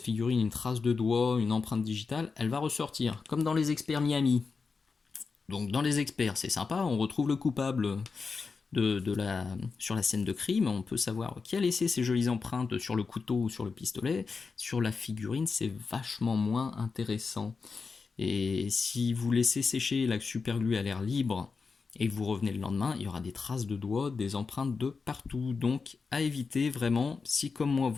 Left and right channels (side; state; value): right; quieter; 4.8 dB